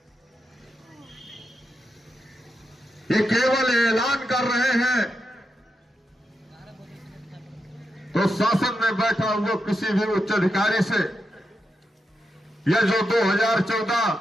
ये केवल ऐलान कर रहे हैं, तो शासन में बैठा हुआ किसी भी उच्च अधिकारी से यह जो 2014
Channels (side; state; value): both; normal; correlation 0.86